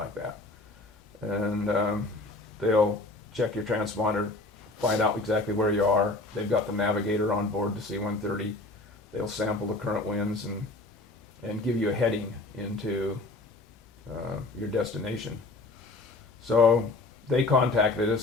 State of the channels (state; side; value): quieter; right; 3.1 dB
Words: that. And they'll check your transponder, find out exactly where you are. They've got the navigator on board the C-130. They'll sample the current winds and give you a heading into your destination. So they contacted